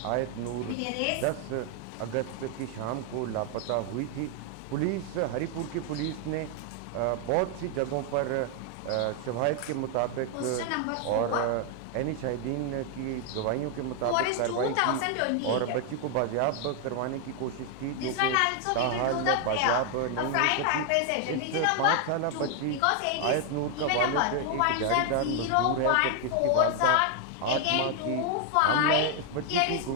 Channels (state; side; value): different; both; correlation 0.00